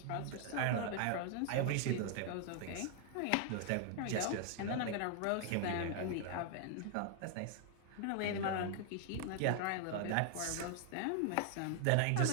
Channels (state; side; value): different; both; correlation 0.00